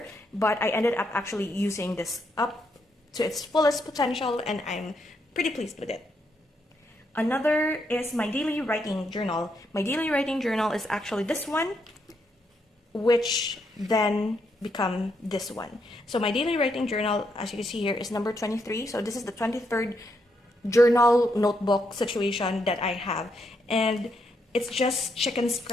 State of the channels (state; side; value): normal; both; correlation 0.78